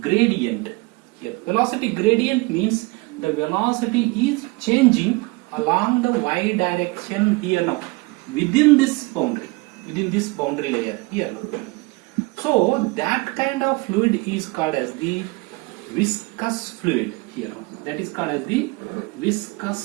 gradient here. Velocity gradient means the velocity is changing along the y direction here now, within this boundary layer here now. So that kind of fluid is called as the viscous fluid here now. That is called as the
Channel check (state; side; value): quieter; left; 24.6 dB